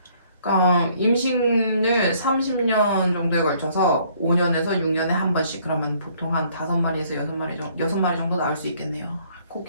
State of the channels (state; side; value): inverted; both; correlation -0.62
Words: 그러니까 임신을 30년 정도에 걸쳐서 5년에서 6년에 한 번씩. 그러면 보통 한 5마리에서 6마리 정도 나올 수 있겠네요.